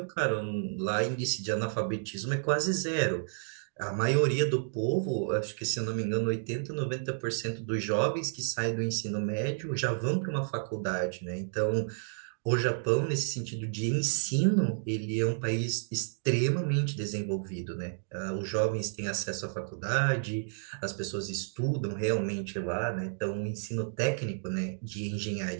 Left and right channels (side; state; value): left; silent; digital silence